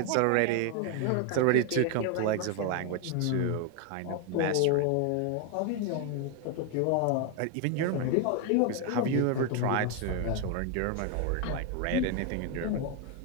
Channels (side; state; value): both; different; correlation 0.01